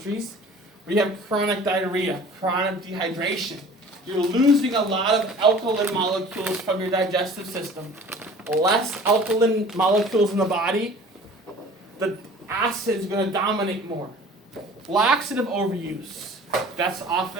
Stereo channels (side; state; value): both; normal; correlation 0.46